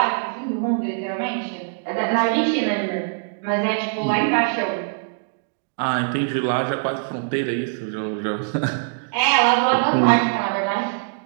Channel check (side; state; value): left; silent; digital silence